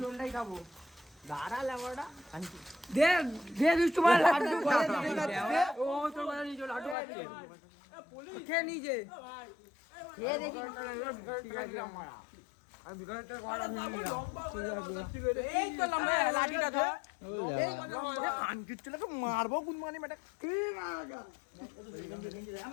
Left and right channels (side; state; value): right; drops out; at 7.0 s